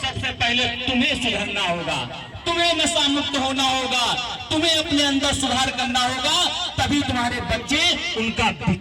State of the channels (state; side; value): identical; both; correlation 1.00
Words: पहले तुम्हें सुधरना होगा, तुम्हें नशा मुक्त होना होगा, तुम्हें अपने अंदर सुधार करना होगा, तभी तुम्हारे बच्चे उनका